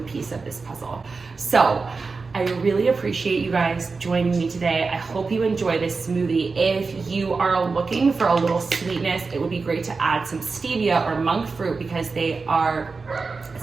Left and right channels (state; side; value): quieter; left; 4.3 dB